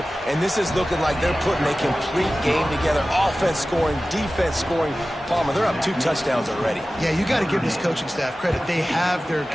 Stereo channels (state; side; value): normal; both; correlation 0.96